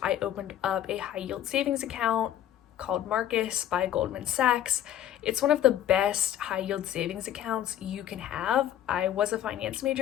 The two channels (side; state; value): right; quieter; 11.2 dB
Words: I opened up a high yield savings account called Marcus by Goldman Sachs. It's one of the best high yield savings accounts you can have. I was a finance